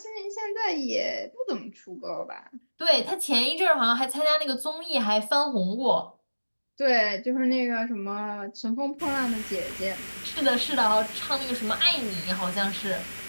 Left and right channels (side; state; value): both; inverted; correlation -1.00